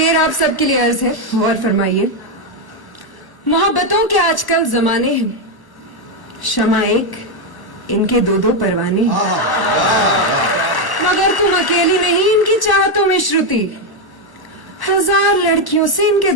आप सबके लिए अर्ज है, गौर फरमाइए। मोहब्बतों के आजकल जमाने हैं, शमा एक, इनके दो दो परवाने हैं। मगर तुम अकेली नहीं इनकी चाहतों में श्रुति, 1000 लड़कियों से इनके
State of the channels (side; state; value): right; late; 1.1 ms